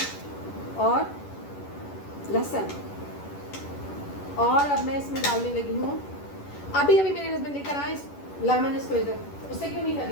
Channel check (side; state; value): right; late; 11 ms